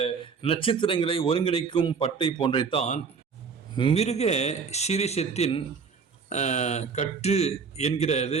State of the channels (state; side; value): quieter; left; 5.5 dB